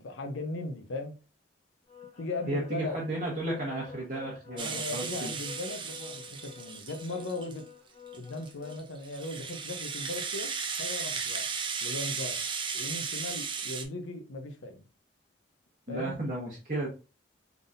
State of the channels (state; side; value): normal; both; correlation 0.17